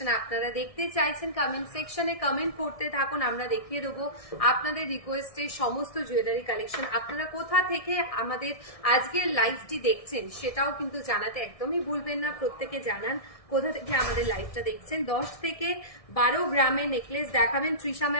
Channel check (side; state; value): right; late; 1.6 ms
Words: আপনারা দেখতে চাইছেন কমেন্ট সেকশনে কমেন্ট করতে থাকুন। আমরা দেখিয়ে দেবো আপনাদের রিকোয়েস্টে সমস্ত জুয়েলারি কালেকশন। আপনারা কোথা থেকে আমাদের আজকের লাইভটি দেখছেন সেটাও কিন্তু জানাতে একদমই ভুলবেন না। প্রত্যেকে জানান কোথা থেকে আমাদের লাইভটা দেখছেন। 10 থেকে 12 গ্রামের নেকলেস দেখাবেন তৃষা